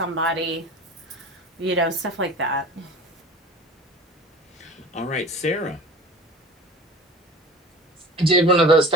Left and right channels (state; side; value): normal; both; correlation 0.39